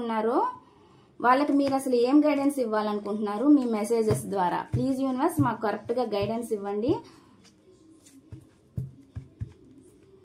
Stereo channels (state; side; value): identical; both; correlation 1.00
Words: వాళ్ళకి మీరు అసలు ఏం గైడెన్స్ ఇవ్వాలనుకుంటున్నారు మీ మెసేజెస్ ద్వారా. ప్లీజ్ యూనివర్స్, మాకు కరెక్ట్గా గైడెన్స్ ఇవ్వండి.